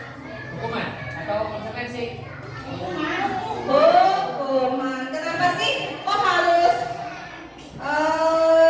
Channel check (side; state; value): both; identical; correlation 1.00